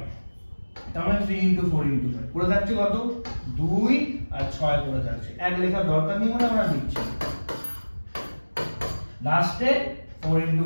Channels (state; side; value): inverted; both; correlation -1.00